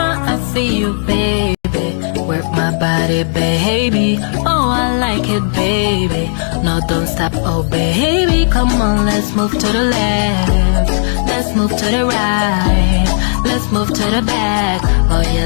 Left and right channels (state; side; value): silent; right; digital silence